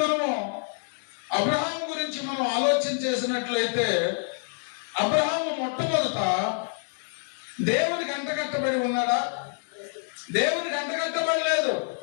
మనము అబ్రహాము గురించి మనం ఆలోచన చేసినట్లయితే, అబ్రహాము మొట్టమొదట దేవునికి అంటకట్టబడి ఉన్నాడా? దేవునికి అంటకట్టబడలేదు.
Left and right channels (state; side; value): silent; right; 60 dB below the other